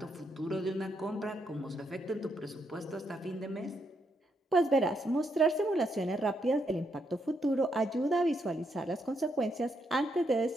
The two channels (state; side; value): normal; both; correlation 0.78